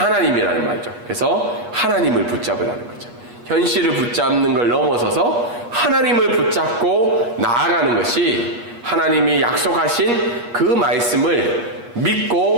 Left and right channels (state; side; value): late; left; 8.4 ms